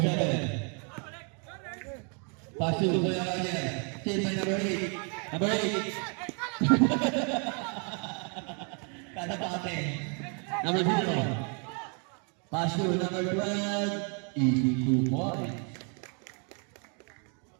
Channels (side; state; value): left; quieter; 38.1 dB